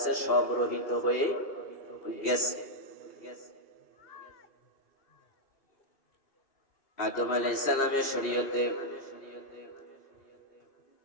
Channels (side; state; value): right; late; 2.6 ms